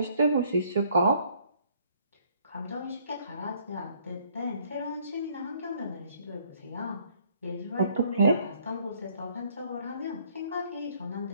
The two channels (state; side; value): inverted; both; correlation -0.63